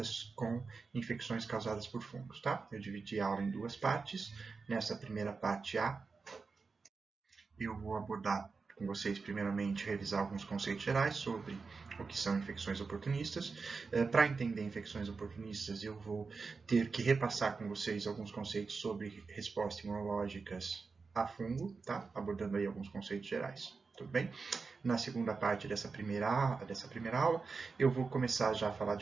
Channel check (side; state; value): left; quieter; 4.6 dB